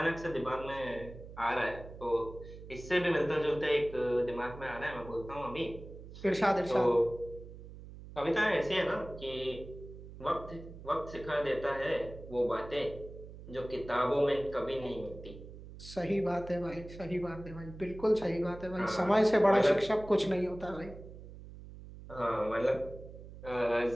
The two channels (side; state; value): right; noise; hum, 15 dB below the sound